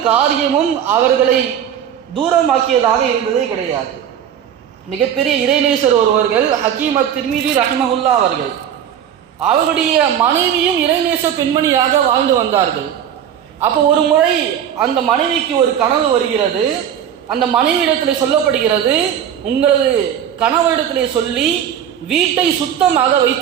காரியமும் அவர்களை தூரமாக்கியதாக இருந்ததே கிடையாது. மிகப்பெரிய இறைநேசர் ஒருவர்கள் ஹக்கீம் அத்-திர்மிதி ரஹிமஹுல்லா அவர்கள், அவருடைய மனைவியும் இறைநேச பெண்மணியாக வாழ்ந்து வந்தார்கள். அப்போ ஒரு முறை அந்த மனைவிக்கு ஒரு கனவு வருகிறது. அந்த மனைவியிடத்திலே சொல்லப்படுகிறது, உங்களது கணவரிடத்திலே சொல்லி வீட்டை சுத்தமாக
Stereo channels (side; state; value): left; quieter; 9.4 dB